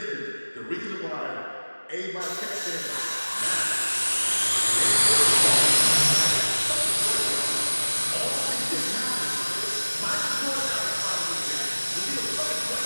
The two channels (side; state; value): both; inverted; correlation -1.00